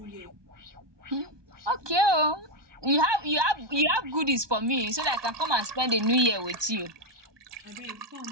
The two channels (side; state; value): left; late; 1.2 ms